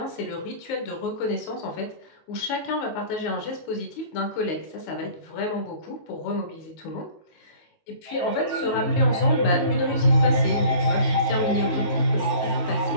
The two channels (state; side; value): late; right; 19 ms